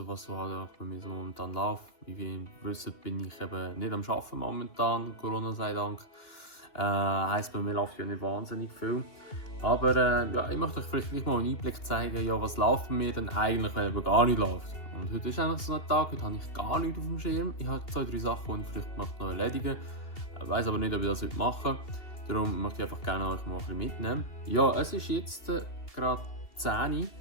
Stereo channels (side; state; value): right; late; 2.9 ms